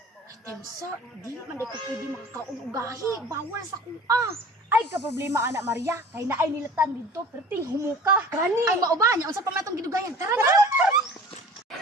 Temsa, di man ko pwede makakaugahi. Bawal sa kuha. Ay, ka-problema, anak Maria. Kay naay nilatan dito, perting humuka. Gani. Ay, mauba niya. Unsa pa matong gidugayan? Tara na.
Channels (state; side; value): normal; both; correlation 0.43